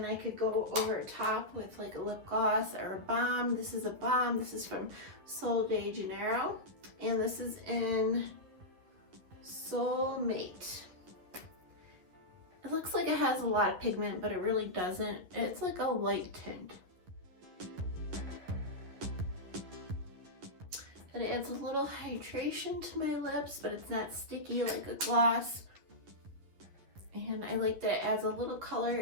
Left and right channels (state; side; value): late; left; 11 ms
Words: I could go over top with like a lip gloss or a balm. This is a balm. This is from Sol de Janeiro. And this is in Soulmate. It looks like it has a lot of pigment, but it really doesn't. It's like a light tint. It adds a little hydration to my lips, but it's not sticky like a gloss. And I like that it adds a little